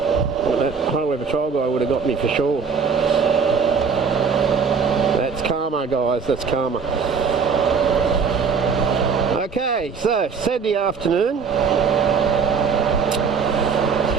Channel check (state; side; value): quieter; left; 5.8 dB